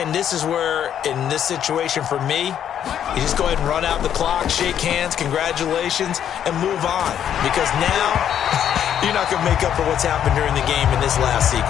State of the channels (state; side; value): quieter; right; 9.6 dB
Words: this is where, in this situation for me, you just go ahead and run out the clock, shake hands, congratulations, and move on. Because now, you're not going to make up for what's happened during the game in this last